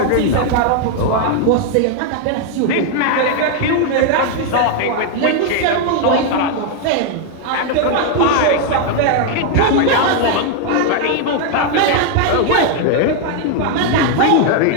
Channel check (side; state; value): both; different; correlation 0.00